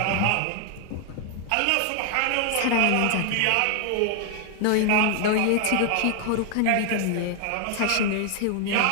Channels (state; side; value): different; both; correlation 0.00